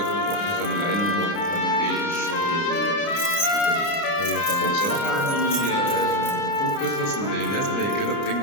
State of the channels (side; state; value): right; late; 30 ms